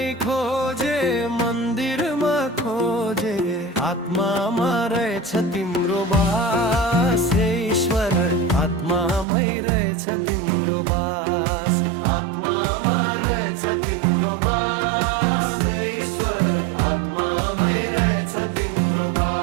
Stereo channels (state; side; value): drops out; left; at 9.2 s